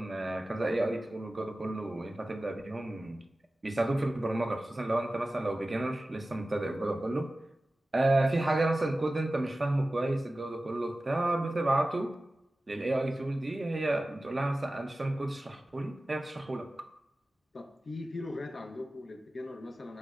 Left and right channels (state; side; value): normal; both; correlation 0.96